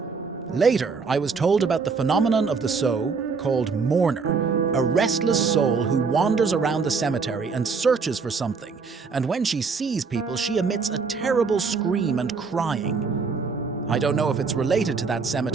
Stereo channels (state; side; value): quieter; left; 5.0 dB